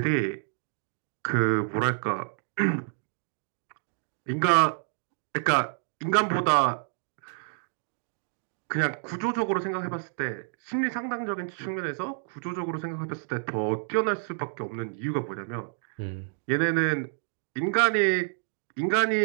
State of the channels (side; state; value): left; silent; digital silence